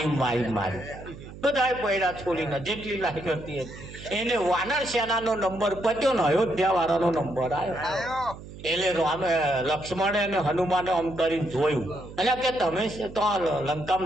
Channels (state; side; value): noise; right; hum, 15 dB below the sound